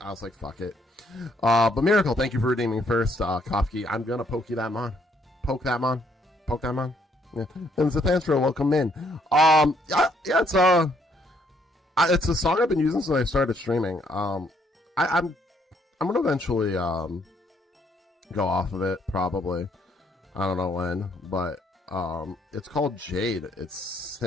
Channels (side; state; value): both; normal; correlation 0.69